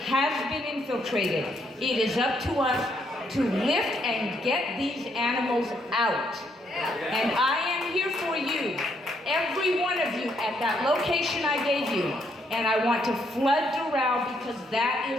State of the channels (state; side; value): normal; both; correlation 0.73